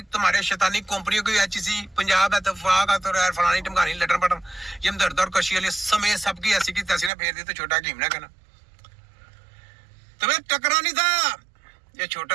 तुम्हारे शैतानी कंपनियों की, एचसी पंजाब है, तफाक है, तो यार फलानी टमकानी लटन पटन ये दर्द और कशी वाले समय सबकी ऐसी की तैसी ना फेर दी तो छोटा हकीम ना कहना। तुम्हें टकरा नहीं था, ये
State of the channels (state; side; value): drops out; left; at 7.1 s